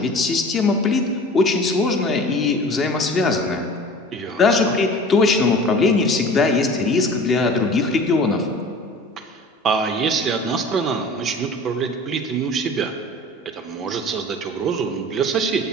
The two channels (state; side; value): normal; both; correlation 0.41